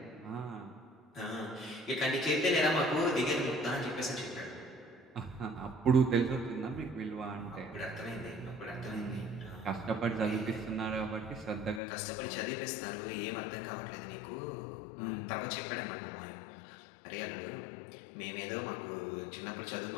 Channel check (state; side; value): drops out; right; at 11.8 s